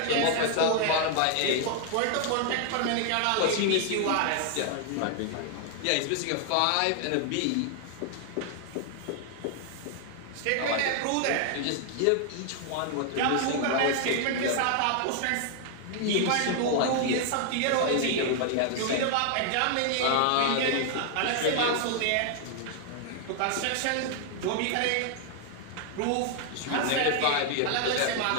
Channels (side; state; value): both; different; correlation 0.00